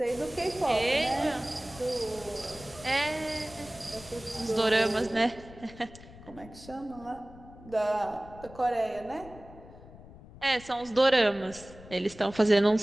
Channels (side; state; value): left; noise; rumble, 19 dB below the sound